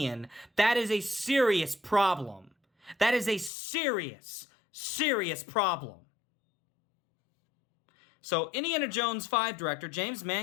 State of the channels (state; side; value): drops out; right; at 3.5 s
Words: that is a serious problem. That is a serious, serious problem. So, Indiana Jones 5 director James